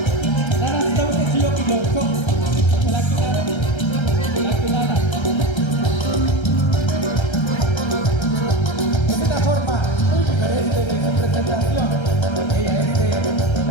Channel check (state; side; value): late; right; 1.3 ms